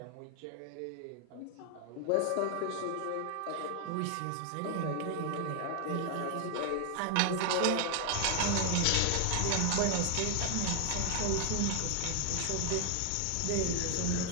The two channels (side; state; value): both; different; correlation 0.00